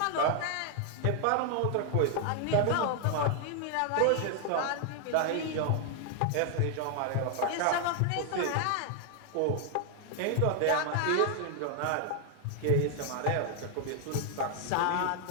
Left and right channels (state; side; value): different; both; correlation 0.00